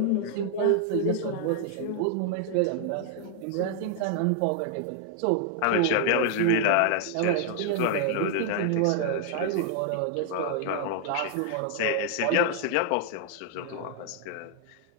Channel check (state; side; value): different; both; correlation 0.00